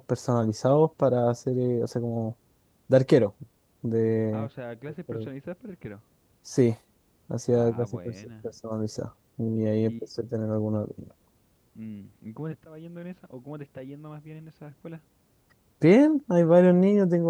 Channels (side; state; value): both; identical; correlation 1.00